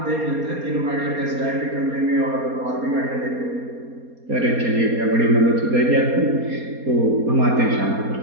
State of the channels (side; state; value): left; late; 4.2 ms